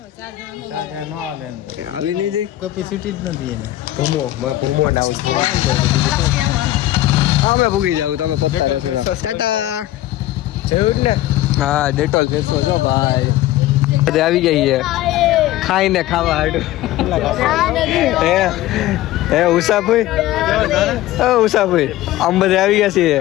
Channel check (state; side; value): quieter; right; 15.0 dB